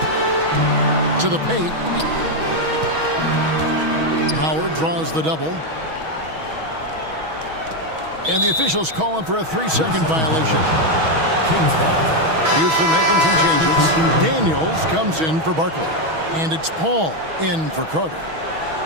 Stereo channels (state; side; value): late; left; 6.2 ms